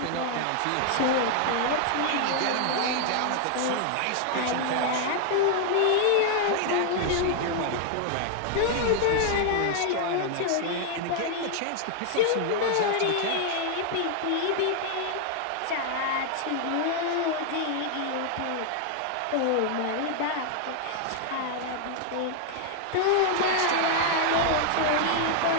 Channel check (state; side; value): different; both; correlation 0.00